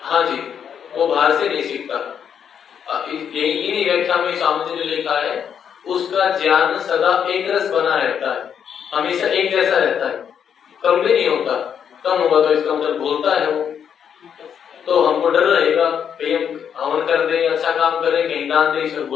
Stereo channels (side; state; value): right; quieter; 8.0 dB